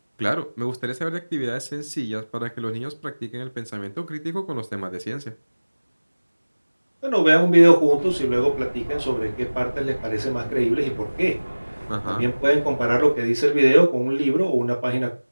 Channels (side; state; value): both; inverted; correlation -1.00